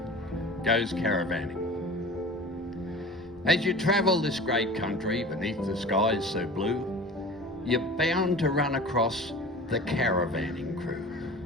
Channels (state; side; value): normal; both; correlation 0.39